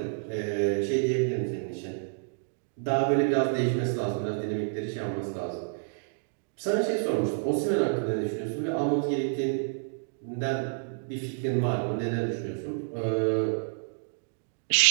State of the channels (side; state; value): left; silent; digital silence